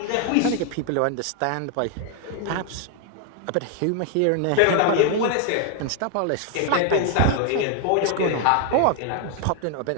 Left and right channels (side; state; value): both; different; correlation 0.00